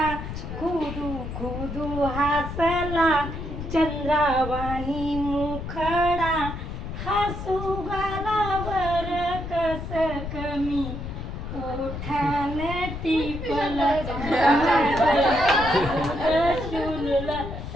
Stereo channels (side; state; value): left; noise; rumble, 7 dB below the sound